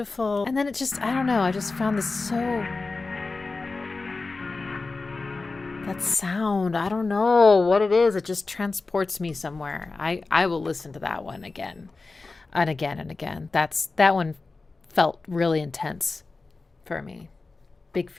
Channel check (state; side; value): quieter; right; 3.8 dB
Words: And then it just, I don't know, I just found this so, that sound, I don't know what it is, it just transports me somewhere. I will listen to that one again and again and again. That one felt really intense for me. Big